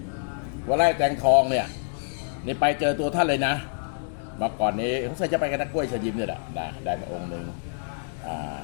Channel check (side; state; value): right; silent; digital silence